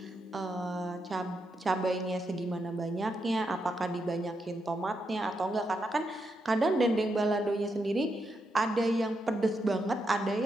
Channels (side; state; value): both; normal; correlation 0.83